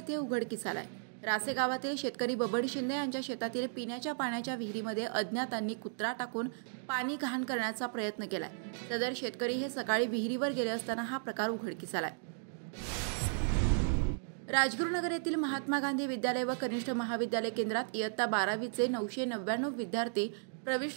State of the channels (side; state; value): left; silent; digital silence